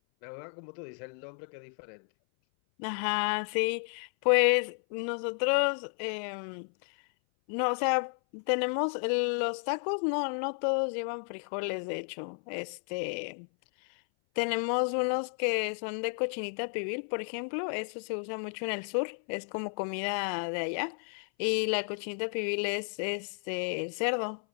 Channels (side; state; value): right; silent; 56 dB below the other